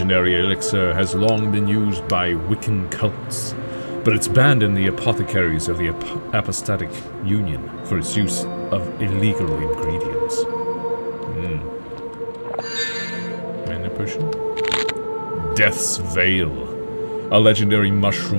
elixir has long been used by Wiccan cults, but it's banned in the apothecaries of the Apostatic Union for its use of illegal ingredients. Mana potion? Death's Veil, a legendary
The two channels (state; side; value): inverted; both; correlation -1.00